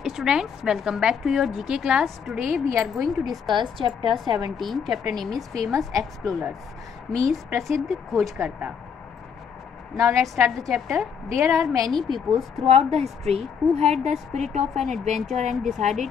students, welcome back to your GK class. Today we are going to discuss chapter 17. Chapter name is Famous Explorers, means प्रसिद्ध खोजकर्ता. Now let's start the chapter. There are many peoples throughout the history who had the spirit of an adventure and decided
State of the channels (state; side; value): quieter; right; 6.9 dB